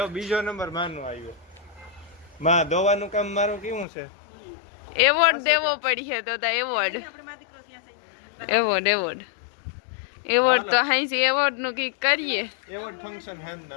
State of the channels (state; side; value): drops out; right; at 3.9 s